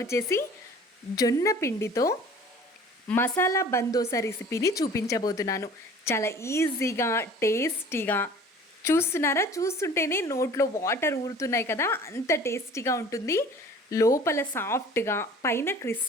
జొన్న పిండితో మసాలా బందోసా రెసిపీని చూపించబోతున్నాను. చాలా ఈజీగా, టేస్టీగా. చూస్తున్నారా? చూస్తుంటేనే నోట్లో వాటర్ ఊరుతున్నాయి కదా, అంత టేస్టీగా ఉంటుంది. లోపల సాఫ్ట్గా, పైన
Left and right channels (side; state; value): both; normal; correlation 0.46